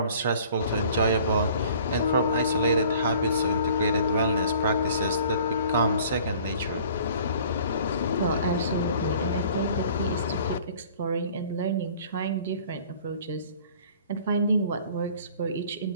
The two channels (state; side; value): inverted; both; correlation -0.51